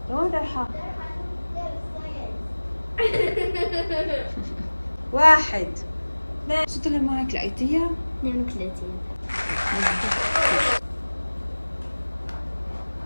لوين رايحة؟ 1 2 شو طلع معك لقيتيها؟ 32. مظبوط.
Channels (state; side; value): inverted; both; correlation -1.00